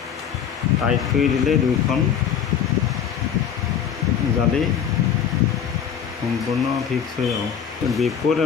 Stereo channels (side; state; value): right; quieter; 8.1 dB